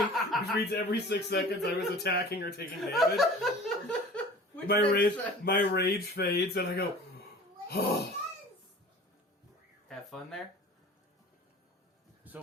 which means every 6 seconds I was attacking or taking damage. My rage fades, and I go, oh. Have fun there. So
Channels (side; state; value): both; normal; correlation 0.42